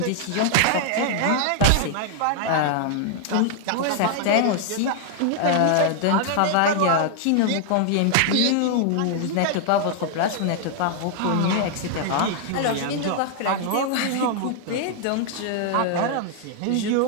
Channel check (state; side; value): different; both; correlation 0.00